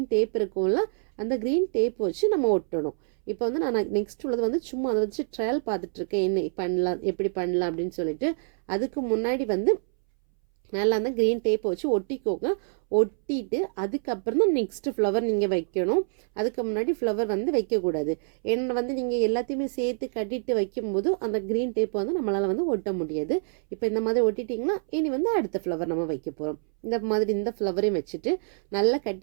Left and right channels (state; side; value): silent; left; 61 dB below the other